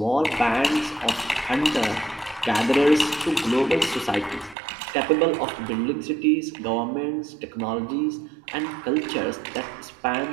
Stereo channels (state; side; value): drops out; left; at 4.5 s